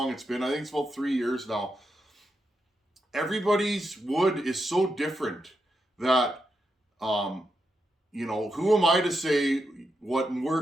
it's been. I think it's about 3 years now. Everybody's wood is so different that, who am I to say what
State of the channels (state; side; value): normal; both; correlation 0.85